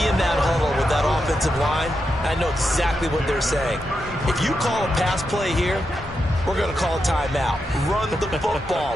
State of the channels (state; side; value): normal; both; correlation 0.86